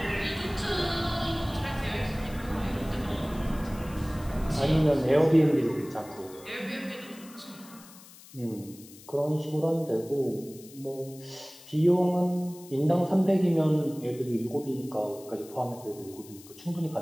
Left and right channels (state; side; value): noise; left; hiss, 20 dB below the sound